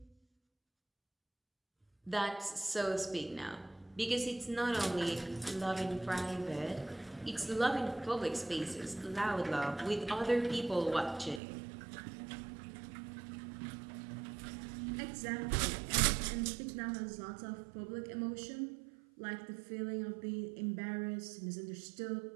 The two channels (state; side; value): drops out; left; at 11.4 s